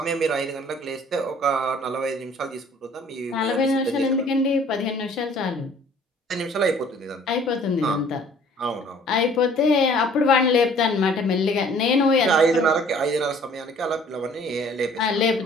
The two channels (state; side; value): normal; both; correlation 0.54